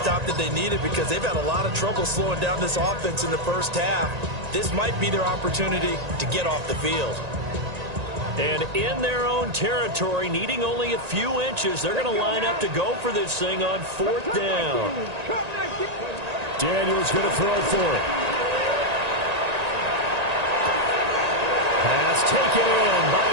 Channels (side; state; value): left; late; 1.9 ms